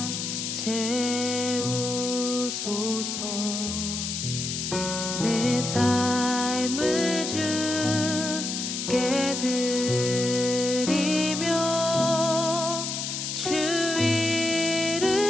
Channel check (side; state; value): left; noise; hiss, 4 dB below the sound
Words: 채우소서 내 삶을 주께 드리며 주